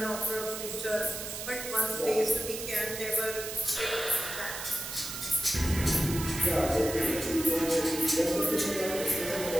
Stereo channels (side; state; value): right; noise; hiss, 7 dB below the sound